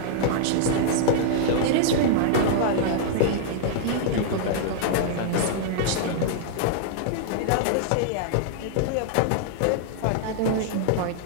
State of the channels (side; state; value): both; different; correlation -0.01